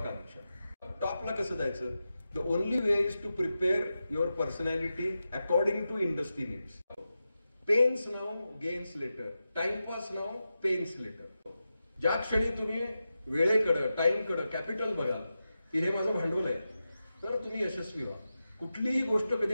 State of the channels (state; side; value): inverted; both; correlation -0.91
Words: टॉपला कसं जायचं? The only way is to prepare your personality according to industry needs. Pains now, gains later. Timepass now, pains later. ज्या क्षणी तुम्ही वेळेकडं, टाइमकडं, कॅपिटल बघाल की हे माझं भांडवल आहे, तर तुम्ही यशस्वी व्हा. कुठलीही गोष्ट